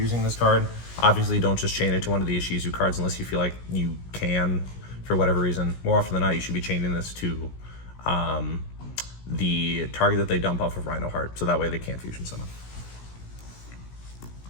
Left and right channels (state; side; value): late; right; 17 ms